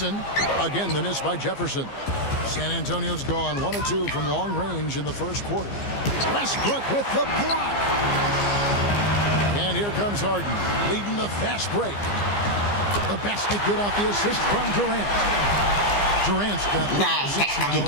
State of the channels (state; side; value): late; right; 15 ms